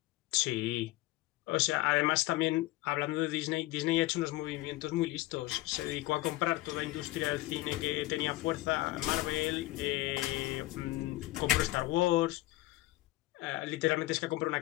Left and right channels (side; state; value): right; quieter; 18.1 dB